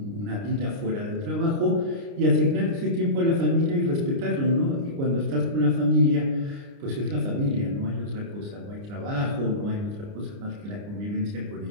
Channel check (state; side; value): late; left; 29 ms